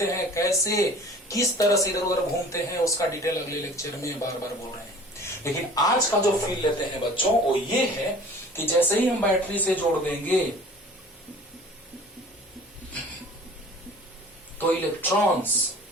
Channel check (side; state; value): both; normal; correlation 0.46